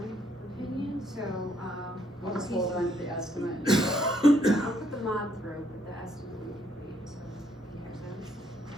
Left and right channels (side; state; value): both; normal; correlation 0.70